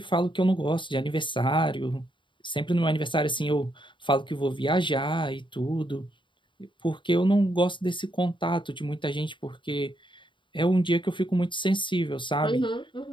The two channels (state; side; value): late; right; 0.23 ms